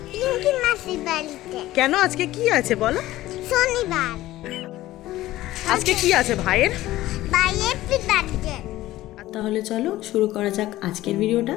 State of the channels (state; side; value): quieter; right; 15.9 dB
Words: পিঙ্কি মাসির বাড়িতে। কেন, আজকে কি আছে বলো? শনিবার, আজকে কি আছে ভাইয়ের? বাইরে বার্থডে। তাহলে চলো শুরু করা যাক আজকের ভিডিওটা।